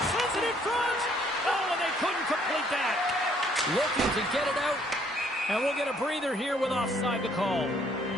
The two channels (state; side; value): normal; both; correlation 0.64